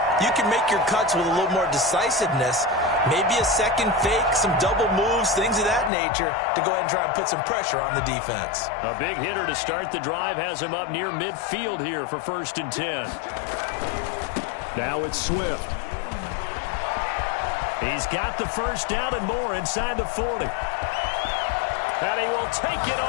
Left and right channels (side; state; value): right; drops out; at 5.9 s